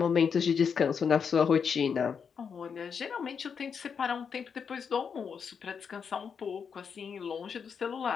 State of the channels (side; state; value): right; quieter; 6.5 dB